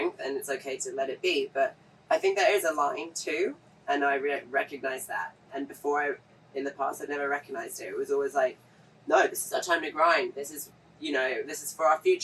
and it's okay to let it be. But I think there is a line too, and I recognize that. And in the past, I'd never recognized it. It was always like, no, this is our time to grind. This is, this is for our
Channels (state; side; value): identical; both; correlation 1.00